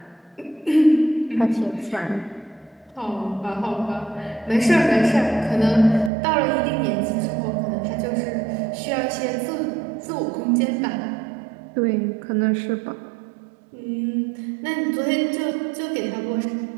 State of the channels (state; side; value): drops out; left; at 6.1 s